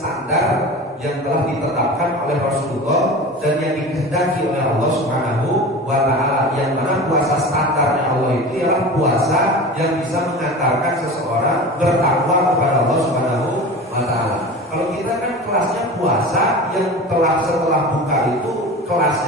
yang telah ditetapkan oleh Rasulullah dan yang dikehendaki oleh Allah Subhanahu wa Ta'ala. Yang mana puasa standarnya Allah itu ialah puasa yang bisa mengantarkan seseorang bertakwa kepada Allah Subhanahu wa Ta'ala. Kalau kita kan kelasnya puasa yang telah setelah buka itu,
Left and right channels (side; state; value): both; normal; correlation 0.33